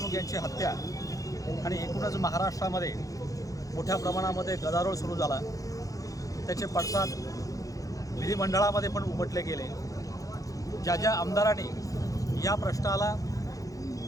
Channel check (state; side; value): late; right; 0.17 ms